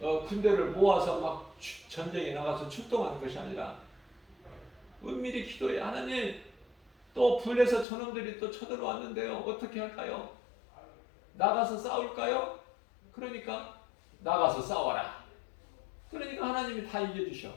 모아서 막 전쟁에 나가서 출동하는 것이 아니라 은밀히 기도해. 하나님, 또 불에서 저놈들이 또 쳐들어왔는데요. 어떻게 할까요? 나가서 싸울까요? 그러니까 나가서 싸워라. 그러니까 하나님이 다 이겨주셔.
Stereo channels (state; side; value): drops out; right; at 7.9 s